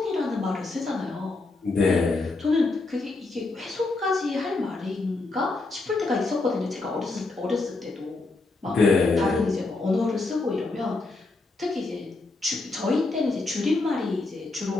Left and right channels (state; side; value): quieter; right; 3.4 dB